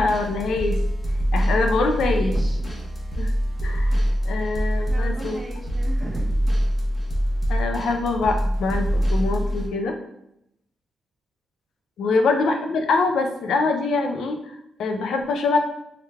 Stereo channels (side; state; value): both; normal; correlation 0.85